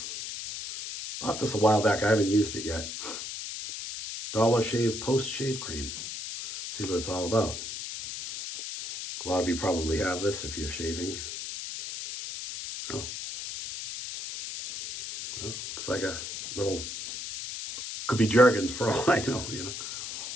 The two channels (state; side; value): noise; left; hiss, 7 dB below the sound